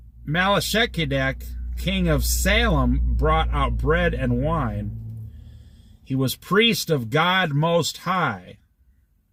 Melchizedek, king of Salem, brought out bread and wine. He was priest of God Most High.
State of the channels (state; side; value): identical; both; correlation 1.00